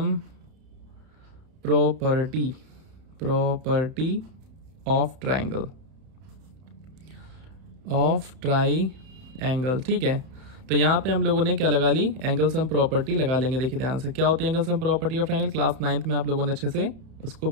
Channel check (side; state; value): left; late; 31 ms